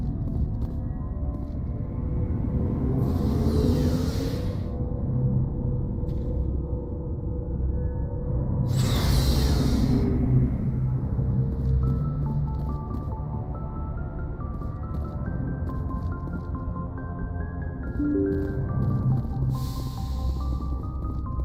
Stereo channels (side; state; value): both; identical; correlation 1.00